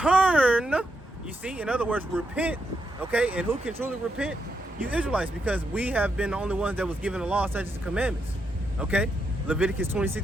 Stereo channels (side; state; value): both; normal; correlation 0.82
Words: you see, in other words, repent, okay? And who can truly repent? You Israelites, because we have been the only ones that was given the law, such as the commandments, okay? Leviticus